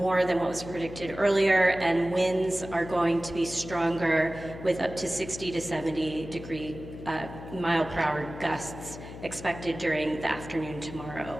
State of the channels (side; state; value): left; noise; hum, 12 dB below the sound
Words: more than what was predicted earlier, and winds are going to be stronger with up to 60 to 70 mile per hour gusts expected during the afternoon tomorrow.